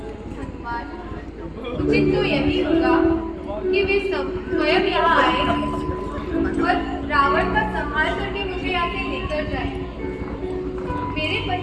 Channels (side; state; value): both; identical; correlation 1.00